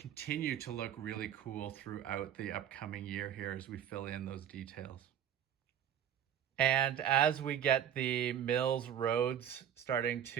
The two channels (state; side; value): quieter; left; 9.8 dB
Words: to look really cool throughout the upcoming year here as we fill in those details. And as we get the MILS roads starting